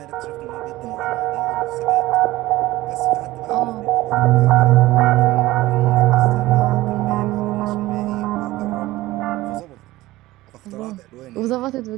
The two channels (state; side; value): quieter; left; 17.6 dB